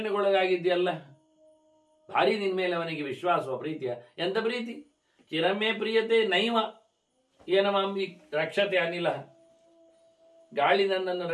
ಭಾರಿ ನಿನ್ ಮೇಲೆ ಅವನಿಗೆ ವಿಶ್ವಾಸವ, ಪ್ರೀತಿಯ. ಎಂತ ಪ್ರೀತಿ? ಚಿರಮೇ ಪ್ರಿಯತೆ ನೈವ ಏನಮಾಂಬಿ ರಕ್ಷತೆ ಅನಿಲ. ಗಾಳಿ ನನ್ನನ್ನು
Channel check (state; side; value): identical; both; correlation 1.00